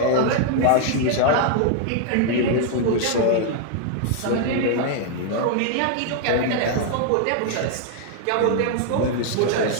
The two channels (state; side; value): different; both; correlation 0.00